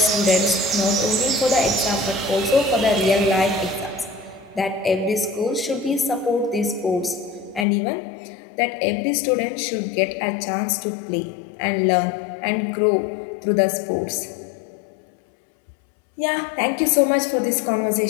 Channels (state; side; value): drops out; right; at 7.7 s